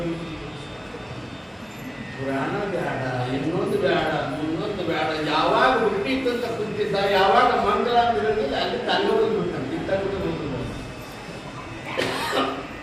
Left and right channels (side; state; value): both; identical; correlation 1.00